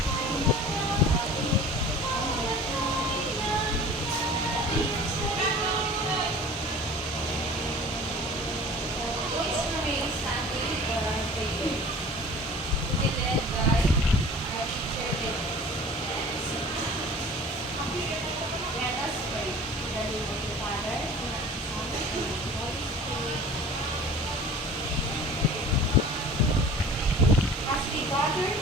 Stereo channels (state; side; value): normal; both; correlation 0.43